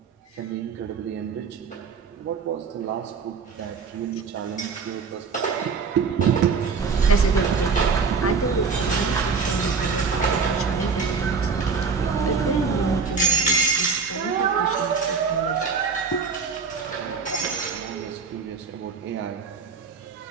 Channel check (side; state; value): left; quieter; 5.2 dB